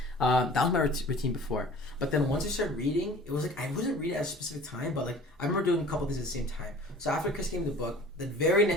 That was my routine before. But then once I started reading, it was like I wasn't reading at a specific time, but like I remember doing a couple things at the same time. So after Chris gave me the book, the very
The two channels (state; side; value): normal; both; correlation 0.45